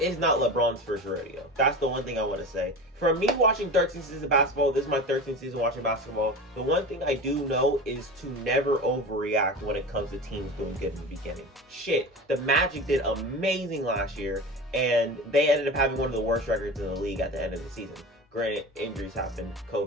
not LeBron's first rodeo. That's the one thing I want to say. For me watching 13 seasons of basketball, this is my 13th season watching basketball, the one thing I do know is to never overreact when it comes to teams doing good in the beginning. Shit, the Magic did amazing last year, and they ended up having one of the worst records in the league at the end of the season. Granted, injuries happened,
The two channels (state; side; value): normal; both; correlation 0.30